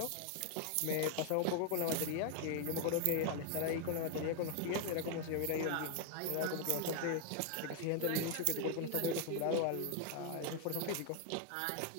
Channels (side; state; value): both; different; correlation 0.00